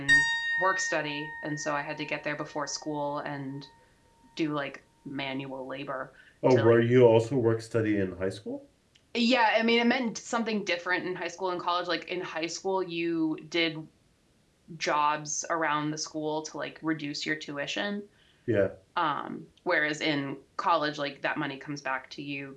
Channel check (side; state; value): both; identical; correlation 1.00